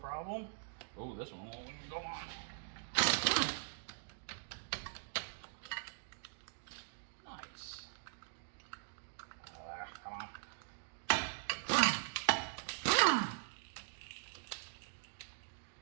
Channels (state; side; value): silent; left; digital silence